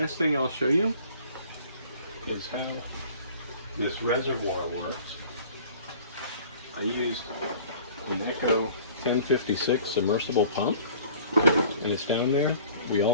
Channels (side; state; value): both; inverted; correlation -0.49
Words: thing I'll show you is how this reservoir works. I used an Echo 1056 submersible pump, and it's down there. We